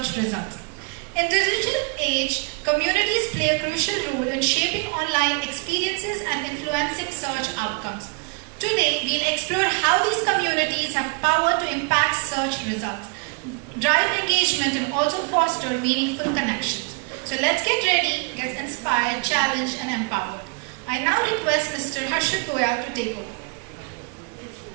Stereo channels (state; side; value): quieter; left; 35.4 dB